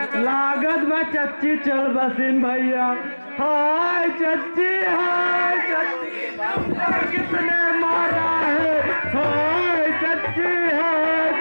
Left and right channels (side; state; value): both; inverted; correlation -1.00